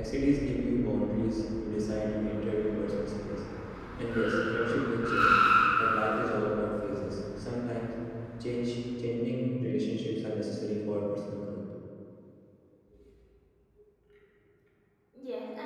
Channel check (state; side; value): identical; both; correlation 1.00